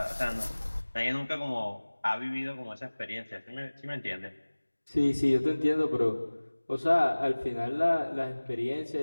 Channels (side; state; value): both; inverted; correlation -1.00